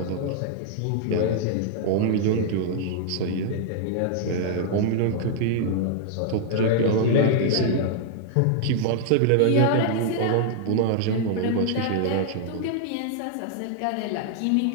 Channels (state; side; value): different; both; correlation -0.01